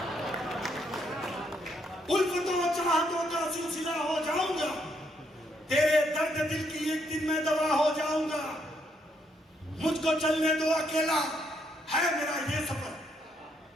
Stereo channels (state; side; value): normal; both; correlation 0.74